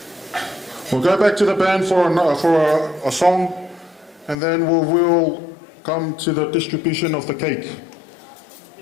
We'll go back to the band for a song, and then we'll come to the distribution of the cake.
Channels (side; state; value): right; drops out; at 4.4 s